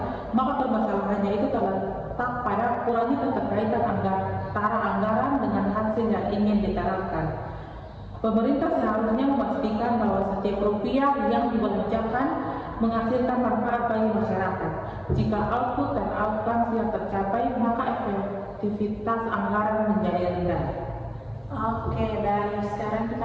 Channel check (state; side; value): identical; both; correlation 1.00